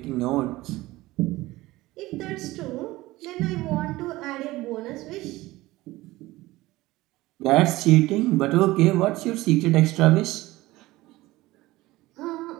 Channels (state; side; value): quieter; left; 18.6 dB